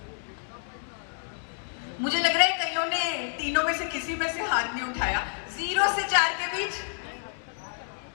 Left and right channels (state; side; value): silent; right; 59 dB below the other